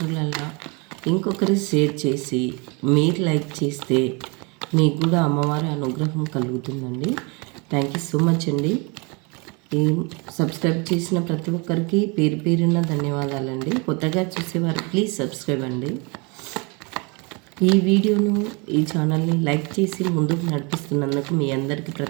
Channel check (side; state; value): left; quieter; 30.4 dB